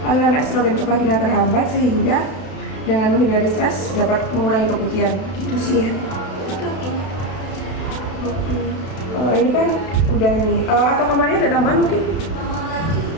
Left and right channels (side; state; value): right; late; 32 ms